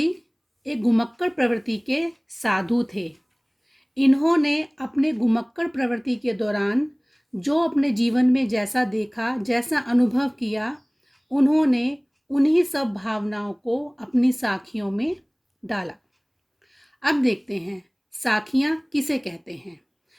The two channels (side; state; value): both; identical; correlation 1.00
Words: एक घुमक्कड़ प्रवृत्ति के साधु थे। इन्होंने अपने घुमक्कड़ प्रवृत्ति के दौरान जो अपने जीवन में जैसा देखा, जैसा अनुभव किया, उन्होंने उन्हीं सब भावनाओं को अपनी साखियों में डाला। अब देखते हैं साखियाँ किसे कहते हैं।